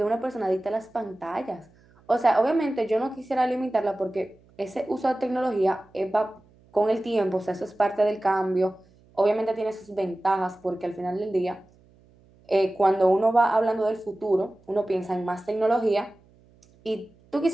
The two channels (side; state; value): right; noise; hum, 30 dB below the sound